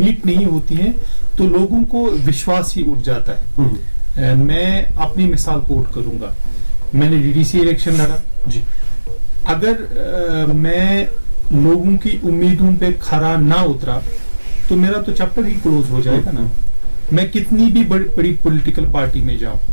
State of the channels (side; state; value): both; inverted; correlation -1.00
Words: نہیں ہوتی ہیں تو لوگوں کو وشواس ہی اٹھ جاتا ہے. میں اپنی مثال کوٹ کروں گا. میں نے DDC الیکشن لڑا. اگر میں لوگوں کی امیدوں پہ کھرا نہ اترا تو میرا تو چیپٹر ہی کلوز ہو جائے گا نا. میں کتنی بھی بڑی پولیٹیکل پارٹی میں جاؤں,